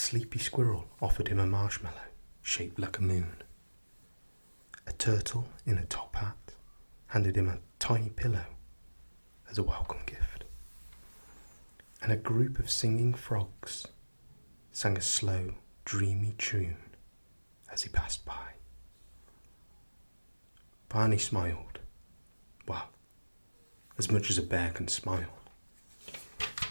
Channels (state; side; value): inverted; both; correlation -1.00